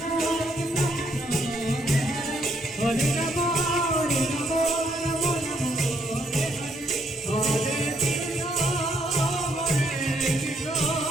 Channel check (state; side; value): normal; both; correlation 0.72